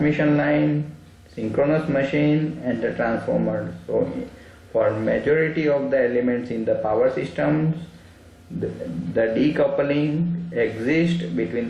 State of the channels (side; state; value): both; identical; correlation 1.00